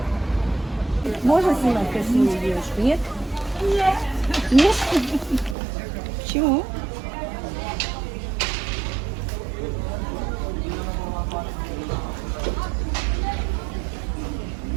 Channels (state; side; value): drops out; left; at 5.6 s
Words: Можно снимать красивую девушку? Нет? Нет. Нет? Почему?